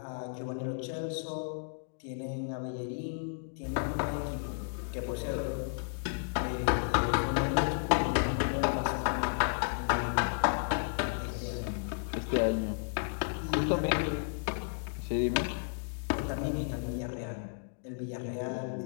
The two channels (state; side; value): silent; right; digital silence